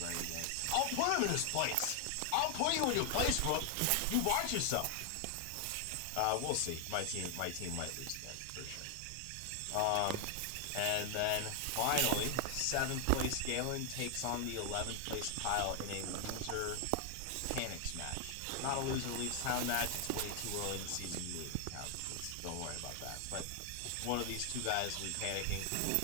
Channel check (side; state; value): both; different; correlation 0.00